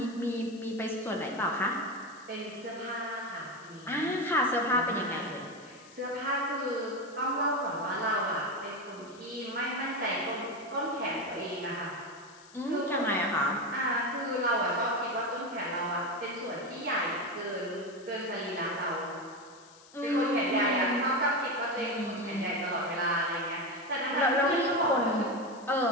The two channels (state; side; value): noise; left; hiss, 23 dB below the sound